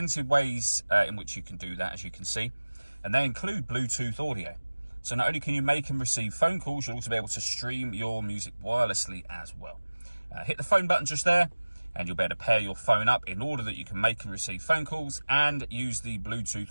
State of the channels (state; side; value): inverted; both; correlation -1.00